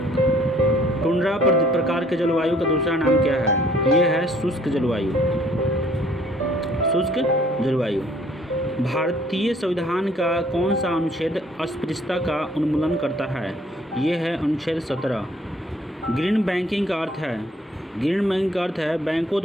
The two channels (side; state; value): both; normal; correlation 0.60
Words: टुंड्रा प्रकार के जलवायु का दूसरा नाम क्या है? ये है शुष्क जलवायु। भारतीय संविधान का कौन सा अनुच्छेद अस्पृश्यता का उन्मूलन करता है? ये है अनुच्छेद 17। ग्रीन बैंकिंग का अर्थ है बैंकों